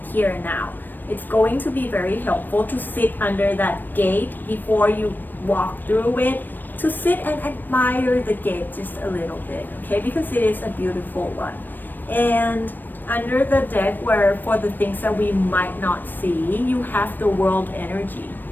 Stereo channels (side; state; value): right; late; 0.092 ms